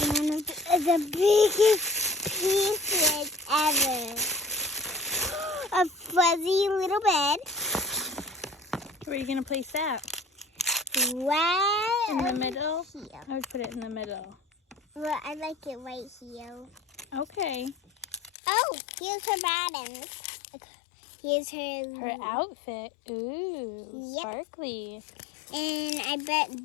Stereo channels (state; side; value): drops out; right; at 18.3 s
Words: one of the biggest pieces ever. A fuzzy little bed. Where are you going to place that? Right in the middle? Here. I would put it in the middle. Well, I like it right here. Okay. Oh, here's her bottoms. Here's her outfit. Ooh, yep. Sparkly. And I bet